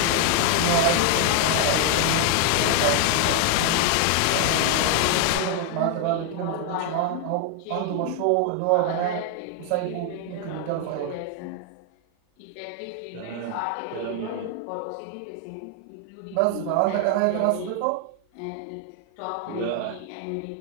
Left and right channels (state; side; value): different; both; correlation 0.00